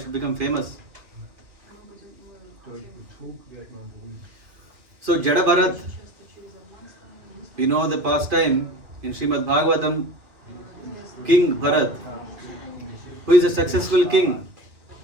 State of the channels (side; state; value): left; late; 2.4 ms